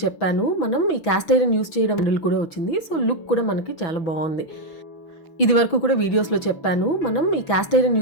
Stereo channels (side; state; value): right; late; 6.1 ms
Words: చెప్పాను, మనం ఈ క్యాస్ట్ ఐరన్ యూస్ చేయడం హ్యాండిల్ కూడా వచ్చింది. సో లుక్ కూడా మనకి చాలా బాగుంది. ఇది వరకు కూడా వీడియోస్లో చెప్పాను, మనం ఈ క్యాస్ట్ ఐరన్